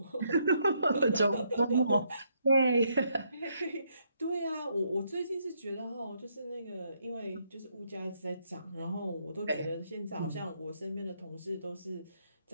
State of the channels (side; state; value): both; inverted; correlation -0.74